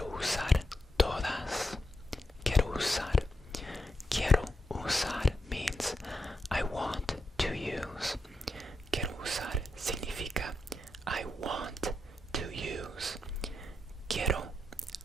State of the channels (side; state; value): both; normal; correlation 0.84